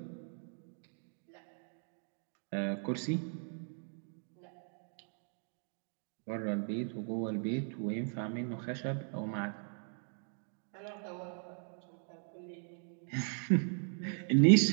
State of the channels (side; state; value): left; silent; 52 dB below the other